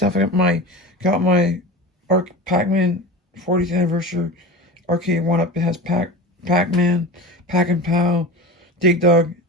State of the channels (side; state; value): both; normal; correlation 0.31